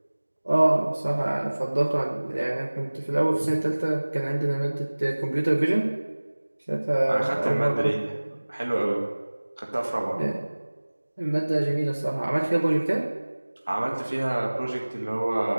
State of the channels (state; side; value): inverted; both; correlation -1.00